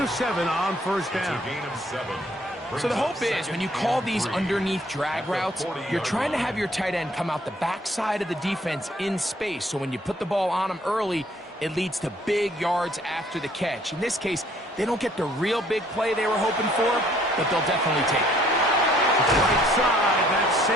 7 on first down. So the hope is when you call these underneath drag routes, you're trying to have your tight end come out the backside of the defense in space. So when you put the ball on him early, it leads to big yards after the catch. In this case, they don't get the real big play they were hoping for, but they'll definitely take it. Right side, that's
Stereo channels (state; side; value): normal; both; correlation 0.62